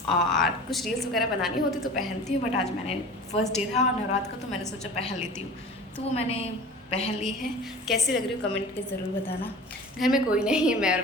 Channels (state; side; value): normal; both; correlation 0.39